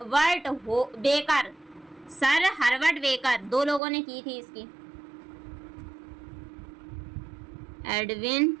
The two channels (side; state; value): left; drops out; at 3.8 s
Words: हर्बर्ट बेकर, दो लोगों ने की थी इसकी। एडविन